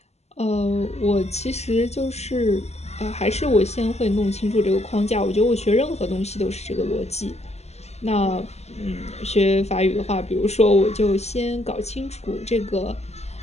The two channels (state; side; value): late; right; 0.31 ms